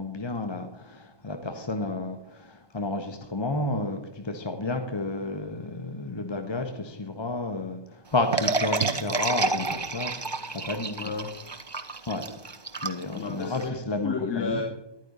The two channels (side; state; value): right; late; 1.2 ms